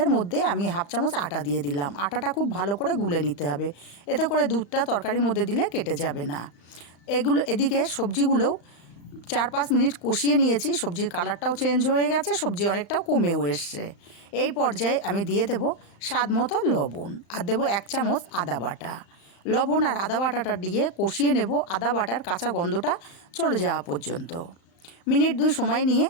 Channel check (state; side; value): late; right; 35 ms